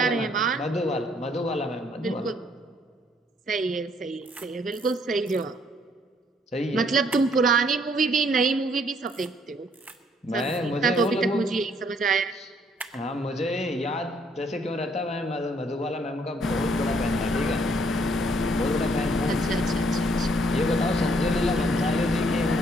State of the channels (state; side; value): normal; both; correlation 0.66